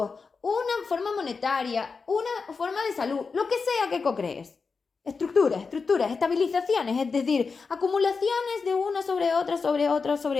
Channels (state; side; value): quieter; right; 4.8 dB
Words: una forma monetaria, una forma de salud, lo que sea que co-crees. Estructuras, estabilizaciones, es decir, acumulaciones de una sobre otra, sobre otra,